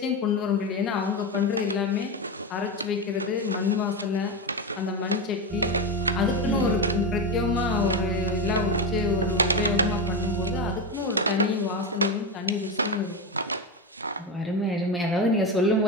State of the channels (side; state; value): both; normal; correlation 0.14